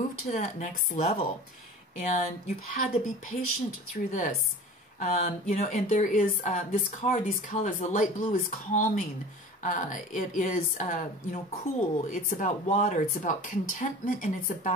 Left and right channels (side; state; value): both; normal; correlation 0.38